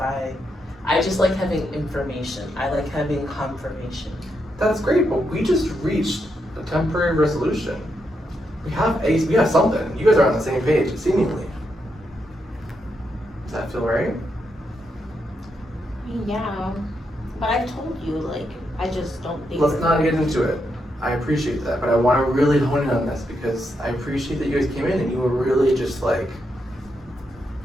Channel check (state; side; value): normal; both; correlation 0.82